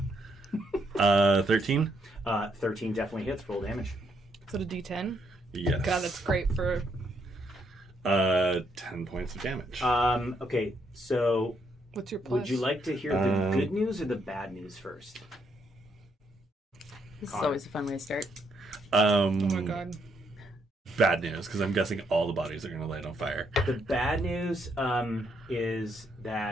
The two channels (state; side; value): normal; both; correlation 0.75